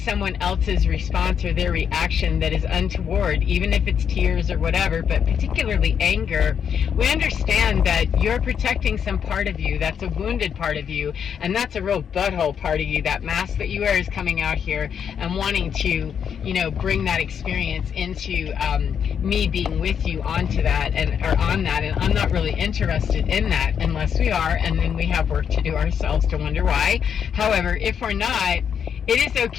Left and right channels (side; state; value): right; quieter; 7.8 dB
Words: else's response or their reaction that is untoward, even if it's tears or whatever, but particularly anger, we understand that you're protecting some part of you. That's a wounded part of you, and that's a real butthole part of you. That mask that you wear is coming out here and wanting to, bring that experience into me being with you onto that and I'm not really interested in that unless we are, and then we have work to do ourselves to wonder why. However, if we're not, it is